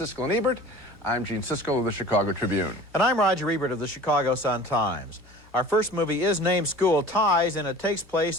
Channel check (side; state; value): both; normal; correlation 0.42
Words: and Ebert. I'm Gene Siskel of the Chicago Tribune. And I'm Roger Ebert of the Chicago Sun-Times. Our first movie is named School Ties, and it takes